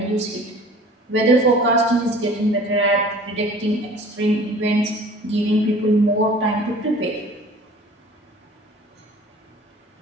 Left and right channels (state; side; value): normal; both; correlation 0.47